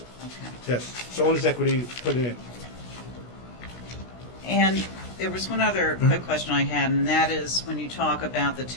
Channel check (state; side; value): late; right; 16 ms